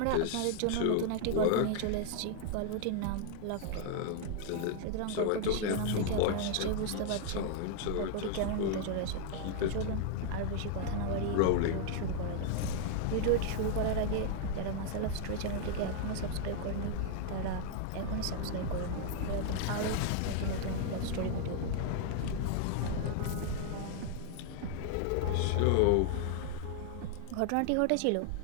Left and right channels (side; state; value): both; different; correlation 0.00